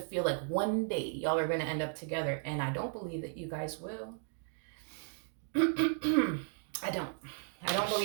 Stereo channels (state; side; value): silent; left; 54 dB below the other